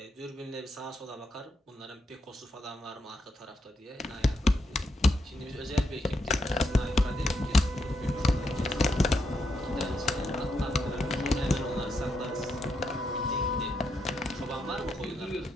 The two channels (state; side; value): normal; both; correlation 0.80